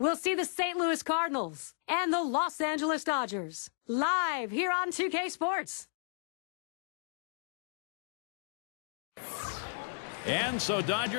see the St. Louis Cardinals and the Los Angeles Dodgers live here on 2K Sports. And so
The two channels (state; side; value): silent; right; digital silence